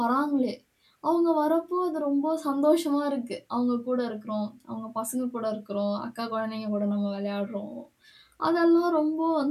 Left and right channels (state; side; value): identical; both; correlation 1.00